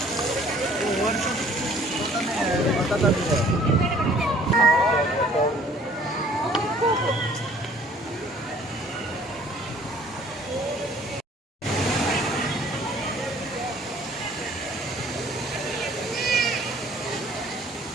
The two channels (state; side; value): normal; both; correlation 0.55